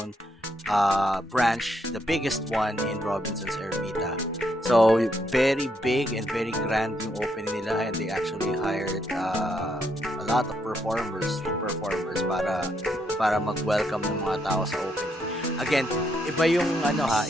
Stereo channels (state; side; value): normal; both; correlation 0.76